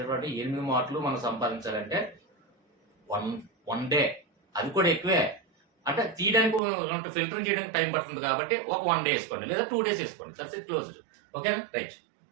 8 మార్కులు మనం సంపాదించాలంటే వన్ డే, అది కూడా ఎక్కువే. అంటే తీయడానికి ఫిల్టరింగ్ చేయడానికి టైం పడుతుంది కాబట్టి ఒక 1 day వేసుకోండి లేదా 2 days వేసుకోండి, దట్స్ ఇట్ క్లోజ్డ్. ఓకేనా, రైట్.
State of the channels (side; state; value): left; drops out; at 6.6 s